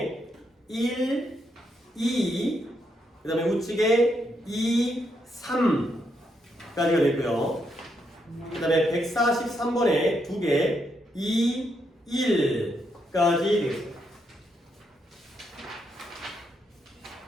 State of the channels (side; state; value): both; normal; correlation 0.79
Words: 1, 2 그 다음에 우측에 2, 3까지가 됐고요. 그 다음에 143번에 2개 2, 1까지 되겠습니다.